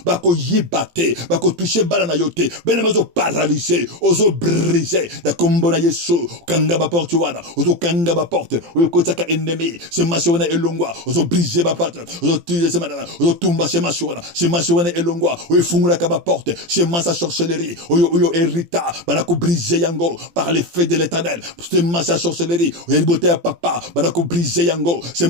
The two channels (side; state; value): left; late; 18 ms